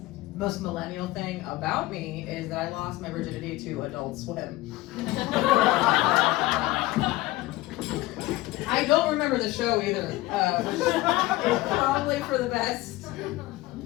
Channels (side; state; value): right; quieter; 18.4 dB